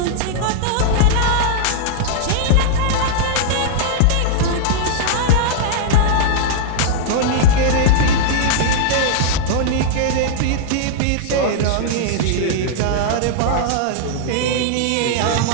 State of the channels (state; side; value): different; both; correlation -0.01